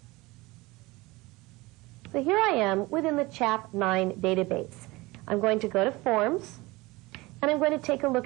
So here I am within the Chap9 database. I'm going to go to Forms, and I'm going to take a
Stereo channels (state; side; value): quieter; left; 22.0 dB